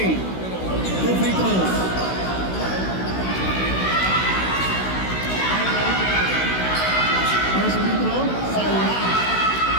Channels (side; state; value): right; late; 16 ms